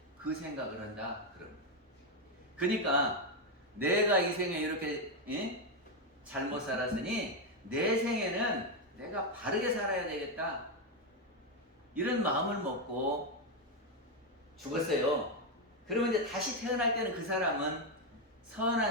그 생각을 한다. 그러니까 내가 이 생에 이렇게 잘못 살았으니 내 생에는 내가 바르게 살아야 되겠다. 이런 마음을 먹고 죽었어요. 그러면 이제 다시 태어날 때는 그 사람은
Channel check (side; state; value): both; normal; correlation 0.05